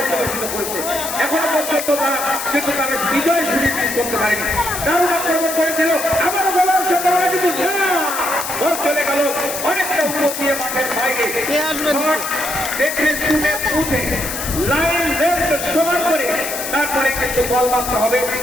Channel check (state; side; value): noise; left; hiss, 6 dB below the sound